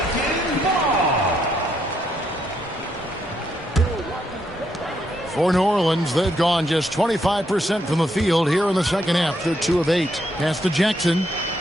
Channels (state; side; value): normal; both; correlation 0.76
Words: For New Orleans, they've gone just 25% from the field here in the second half. They're 2 of 8. Pass to Jackson.